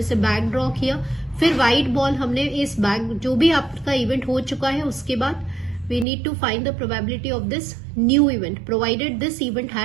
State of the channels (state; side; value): drops out; left; at 6.1 s